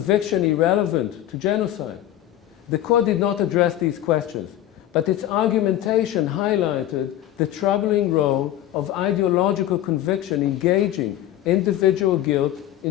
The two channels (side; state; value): right; quieter; 12.9 dB